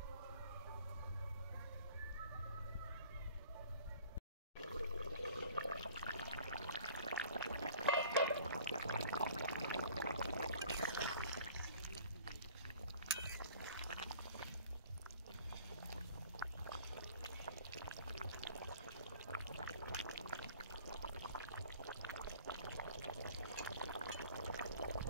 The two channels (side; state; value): both; inverted; correlation -0.50